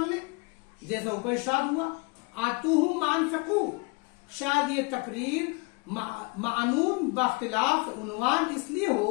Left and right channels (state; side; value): quieter; right; 29.2 dB